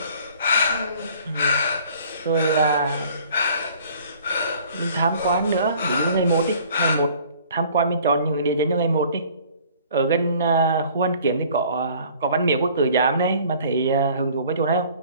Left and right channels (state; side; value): inverted; both; correlation -0.53